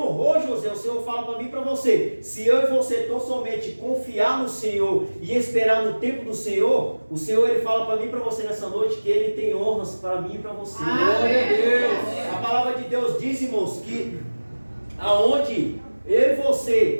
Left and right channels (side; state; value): both; inverted; correlation -1.00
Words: José. O Senhor fala para mim e para você: se eu e você tão somente confiar no Senhor e esperar no tempo do Senhor, o Senhor, Ele fala para mim e para você nessa noite que Ele tem honras para mim e para você. Glória a Deus. A palavra de Deus diz, irmãos, que aonde eu e